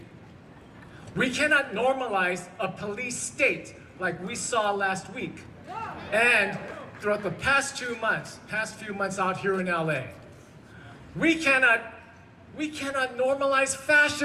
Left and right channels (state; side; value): identical; both; correlation 1.00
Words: We cannot normalize a police state like we saw last week and throughout the past few months out here in LA. We cannot normalize